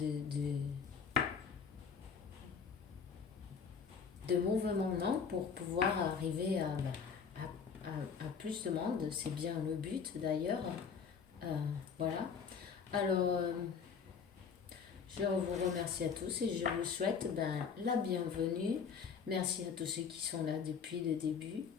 de mouvement non, pour pouvoir arriver à plus de monde. C'est bien le but d'ailleurs. Voilà. Alors, je vous remercie à tous et je vous souhaite la bienvenue. Merci à tous ceux qui sont là depuis le début,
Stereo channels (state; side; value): quieter; right; 6.3 dB